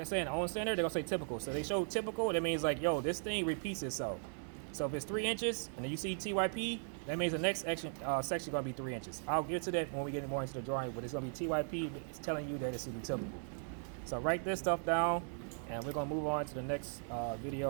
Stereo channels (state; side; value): silent; left; 52 dB below the other